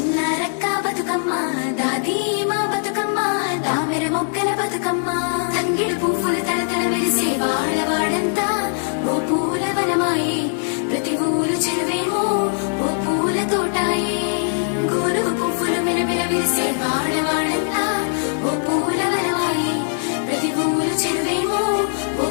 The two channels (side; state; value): right; silent; 65 dB below the other